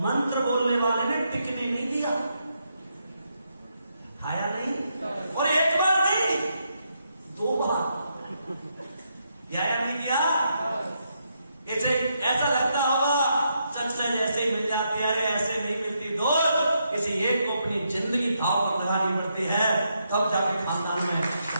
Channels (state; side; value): inverted; both; correlation -0.79